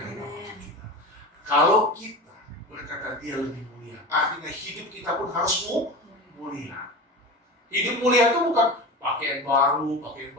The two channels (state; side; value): normal; both; correlation 0.29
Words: apapun kita. Kalau kita berkata dia lebih mulia, artinya hidup kita pun harus mulia. Hidup mulia itu bukan pakaian baru, pakaian